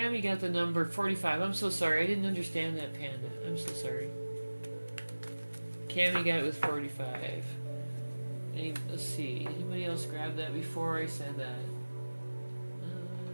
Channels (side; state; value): both; inverted; correlation -1.00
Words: got the number 45. I'm so sorry. I didn't understand that, Panda. I'm so sorry. Cammy got it with 45. Let's see. Anybody else grab that before I said that?